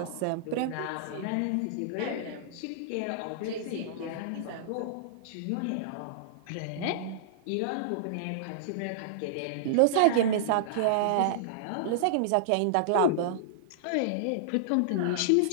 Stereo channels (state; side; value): different; both; correlation -0.02